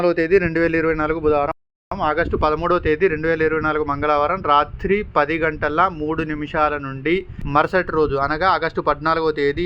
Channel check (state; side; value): identical; both; correlation 1.00